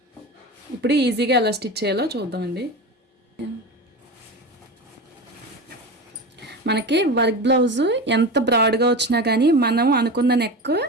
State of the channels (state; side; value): normal; both; correlation 0.27